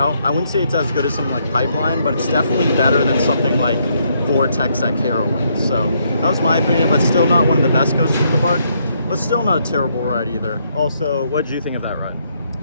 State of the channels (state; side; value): inverted; both; correlation -0.73